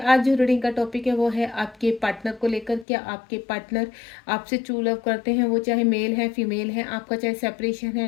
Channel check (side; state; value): right; drops out; at 2.9 s